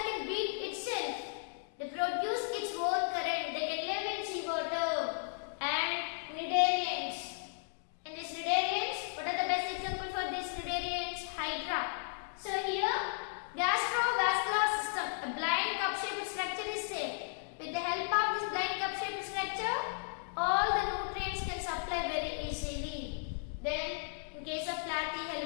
can beat itself, they produce its own current. They can live in seawater. And cnidarians. In these cnidarians, what are the best example for these cnidarians? Hydra. So here, gastrovascular system, a blind cup-shaped structure is there. With the help of this blind cup-shaped structure, all the nutrients can supply very easily. Then, in case of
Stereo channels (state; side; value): silent; right; digital silence